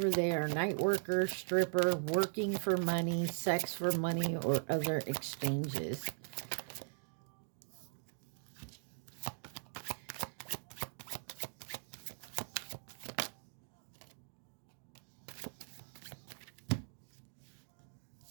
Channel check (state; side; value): silent; left; digital silence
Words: there, night worker, stripper, working for money, sex for money, or other exchanges.